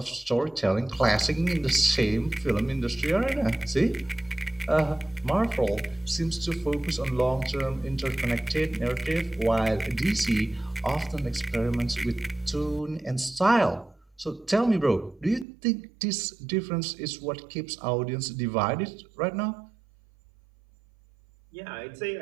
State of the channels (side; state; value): left; drops out; at 15.5 s